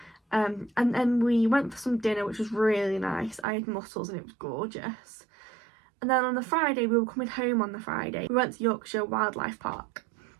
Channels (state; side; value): drops out; left; at 3.5 s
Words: And then we went for some dinner, which was really nice. I had mussels and it was gorgeous. And then on the Friday, we were coming home on the Friday. We went to Yorkshire Wildlife Park,